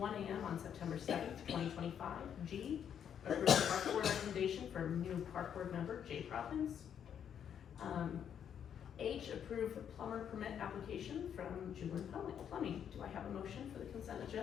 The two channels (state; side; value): quieter; right; 8.6 dB